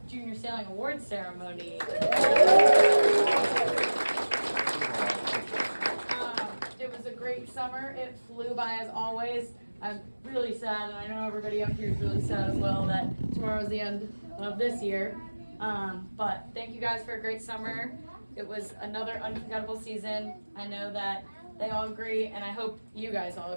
Junior Sailing Awards Ceremony. It was a great summer. It flew by as always. I'm really sad, and I know everybody up here is really sad as well, that tomorrow's the end of this year. But thank you guys for a great summer. It was another unforgettable season. I know that they all agree, and I hope you guys all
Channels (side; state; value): both; inverted; correlation -1.00